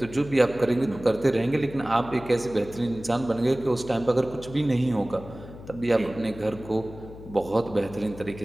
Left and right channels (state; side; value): noise; left; hum, 15 dB below the sound